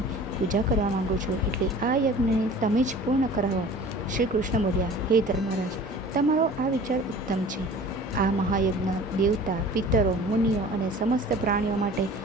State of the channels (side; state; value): both; normal; correlation 0.44